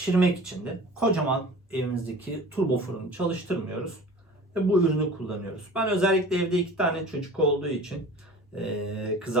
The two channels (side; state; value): both; normal; correlation 0.40